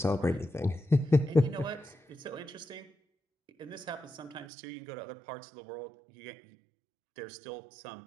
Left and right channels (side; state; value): left; drops out; at 4.5 s